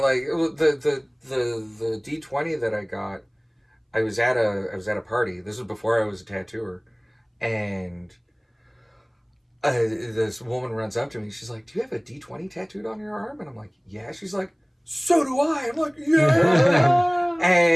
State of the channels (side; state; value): both; identical; correlation 1.00